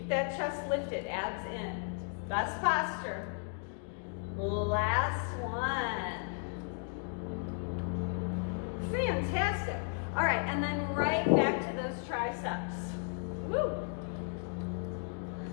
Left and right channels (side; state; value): right; silent; 55 dB below the other